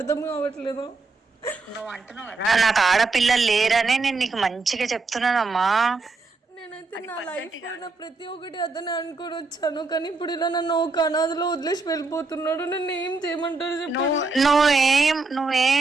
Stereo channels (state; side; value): quieter; left; 3.8 dB